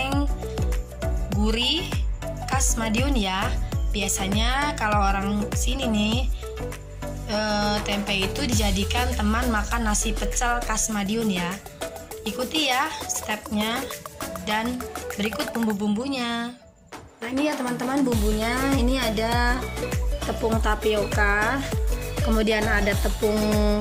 gurih khas Madiun ya. Biasanya kalau orang sini nih tempe itu dijadikan teman makan nasi pecel khas Madiun ya. Ikuti ya stepnya dan berikut bumbu-bumbunya. Nah, ini ya teman-teman bumbunya. Ini ada tepung tapioka, kemudian ada tepung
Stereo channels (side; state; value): both; identical; correlation 1.00